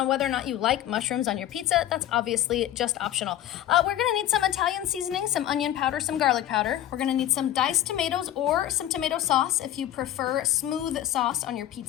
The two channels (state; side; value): quieter; right; 12.5 dB